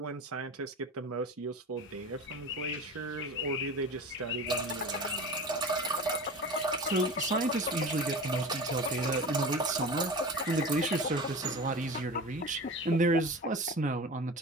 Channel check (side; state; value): both; normal; correlation 0.33